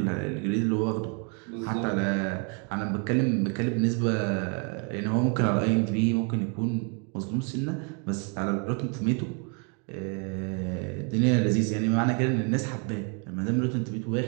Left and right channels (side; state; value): left; quieter; 37.2 dB